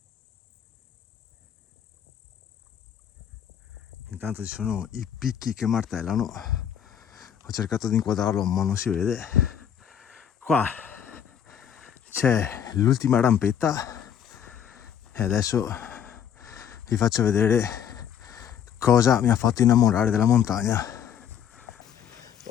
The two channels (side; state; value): right; quieter; 8.8 dB